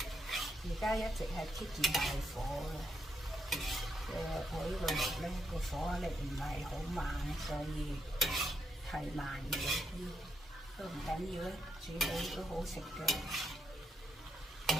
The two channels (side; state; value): both; normal; correlation 0.79